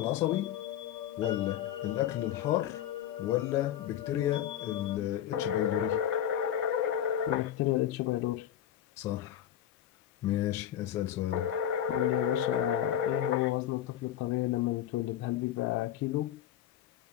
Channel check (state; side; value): quieter; right; 11.0 dB